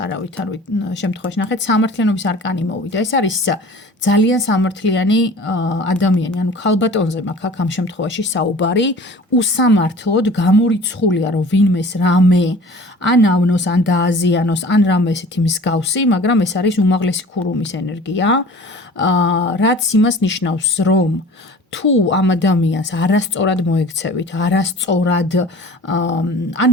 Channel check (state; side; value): normal; both; correlation 0.44